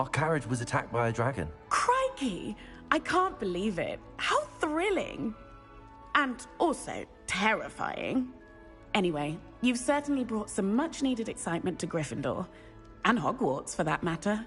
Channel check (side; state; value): both; identical; correlation 1.00